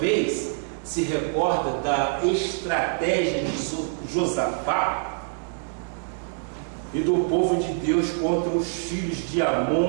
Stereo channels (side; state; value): left; silent; digital silence